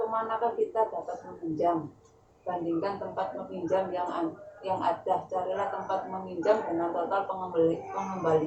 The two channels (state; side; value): identical; both; correlation 1.00